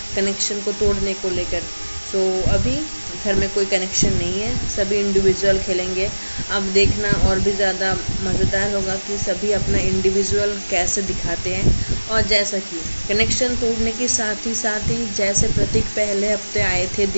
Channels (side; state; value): both; inverted; correlation -1.00